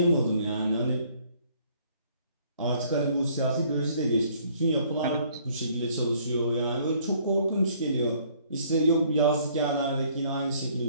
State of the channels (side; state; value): both; inverted; correlation -0.61